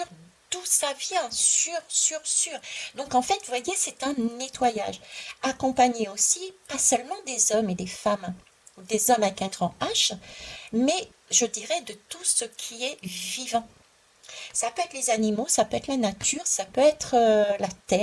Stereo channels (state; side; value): identical; both; correlation 1.00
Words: d'où ça vient, sur. Donc en fait, vous voyez, c'est un nettoyage, accompagné aussi, pas seulement des hommes et des femmes, ou des hommes avec un grand H, mais je dirais de tout ce qui est vivant. Ça peut être les animaux, ça peut être la nature, ça peut être la